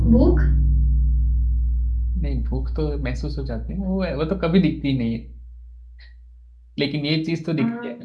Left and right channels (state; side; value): identical; both; correlation 1.00